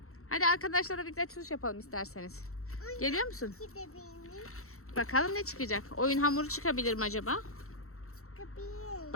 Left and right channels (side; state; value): right; late; 0.63 ms